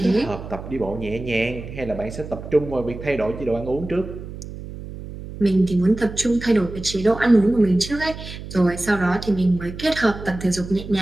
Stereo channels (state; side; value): noise; right; hum, 11 dB below the sound